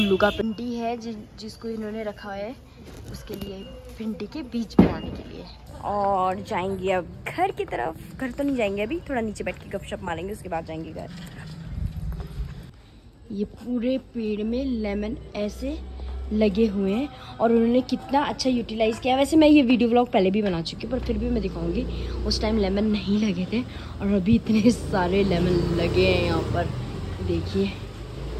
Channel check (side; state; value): both; identical; correlation 1.00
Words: का भिंडी है जिसको इन्होंने रखा है उसके लिए, भिंडी के बीज बनाने के लिए। और जाएंगे अब घर की तरफ। घर तो नहीं जाएंगे अभी, थोड़ा नीचे बैठ के गपशप मारेंगे, उसके बाद जाएंगे घर। ये पूरे पेड़ में लेमन ऐसे लगे हुए हैं, और उन्होंने कितना अच्छा यूटिलाइज किया। वैसे मैं ये वीडियो व्लॉग पहले भी बना चुकी हूँ, पर फिर भी मैं दिखाऊंगी। उस टाइम लेमन नहीं लगे थे, और अभी इतने सारे लेमन लगे हैं यहाँ पर। देखिए